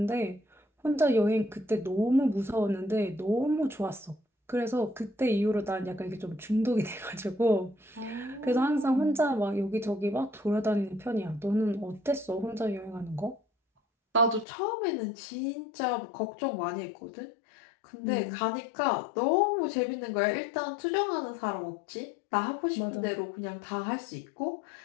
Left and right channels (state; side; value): drops out; right; at 14.5 s